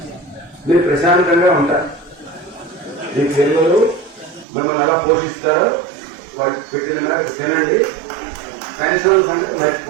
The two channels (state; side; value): drops out; left; at 4.5 s